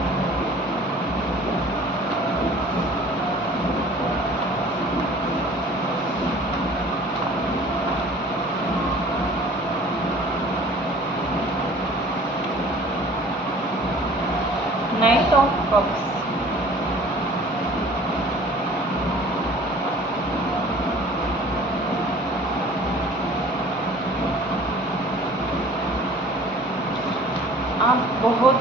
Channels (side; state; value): both; normal; correlation 0.48